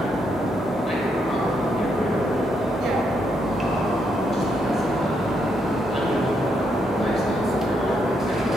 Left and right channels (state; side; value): normal; both; correlation 0.78